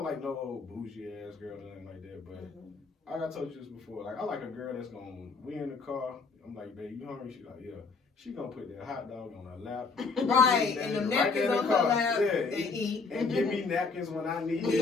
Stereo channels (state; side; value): quieter; right; 4.4 dB